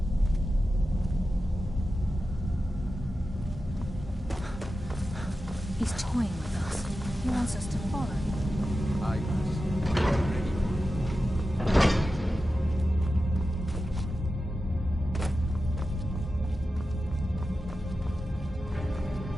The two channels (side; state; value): both; normal; correlation 0.92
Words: He's toying with us. He wants us to follow.